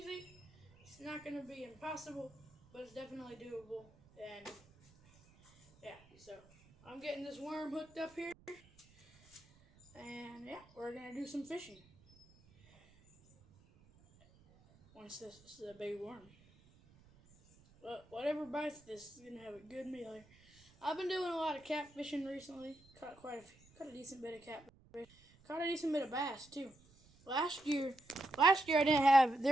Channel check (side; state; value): right; noise; rumble, 27 dB below the sound